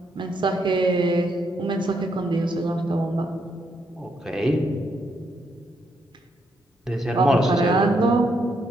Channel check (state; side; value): normal; both; correlation 0.76